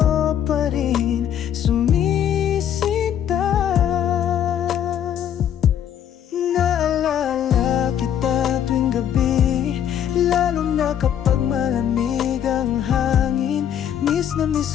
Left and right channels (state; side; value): quieter; right; 9.6 dB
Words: pa rin sumisita. Naalala kita tuwing gabi, lalo na kapag malamig ang hangin. Miss na miss